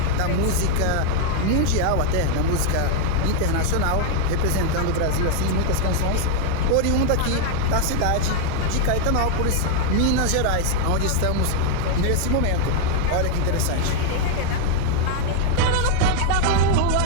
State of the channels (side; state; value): both; different; correlation 0.00